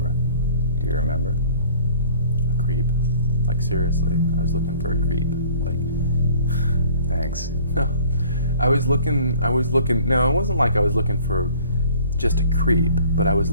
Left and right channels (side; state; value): both; inverted; correlation -0.52